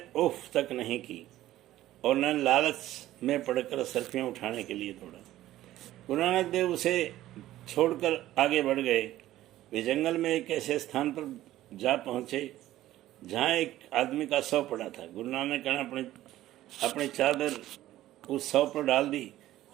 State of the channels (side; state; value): left; quieter; 14.5 dB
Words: उफ तक नहीं की और न लालच में पड़कर असरफियाँ उठाने के लिए दौड़ा। गुरु नानक देव उसे छोड़कर आगे बढ़ गए। वे जंगल में एक ऐसे स्थान पर जा पहुँचे जहाँ एक आदमी का शव पड़ा था। गुरु नानक ने अपनी चादर उस शव पर डाल दी